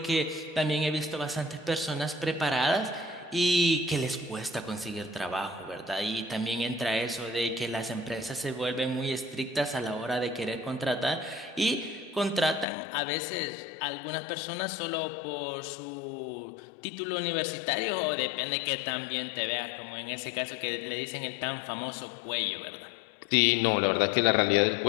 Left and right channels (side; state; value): right; drops out; at 12.7 s